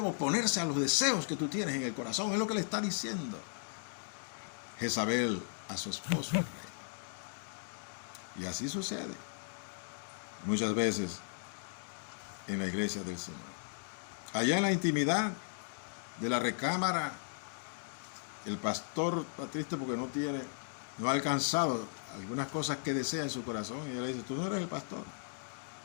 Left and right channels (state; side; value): silent; right; digital silence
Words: oponerse a los deseos que tú tienes en el corazón. Es lo que le está diciendo Jezabel a su esposo, el rey. Y así sucede muchas veces en la iglesia del Señor. Allá en la intimidad de la recámara, el pastor está triste porque no ha alcanzado algunas cosas que desea en su corazón, y él le dice, tú no eres el pastor.